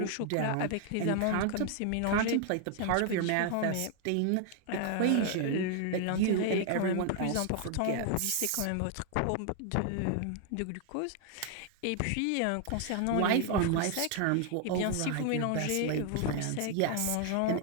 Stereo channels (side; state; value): both; different; correlation 0.00